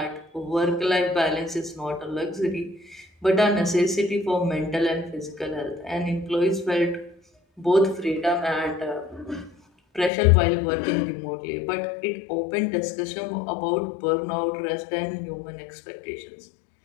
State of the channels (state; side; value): drops out; right; at 10.1 s